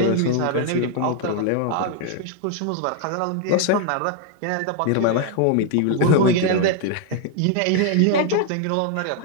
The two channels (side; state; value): both; different; correlation 0.00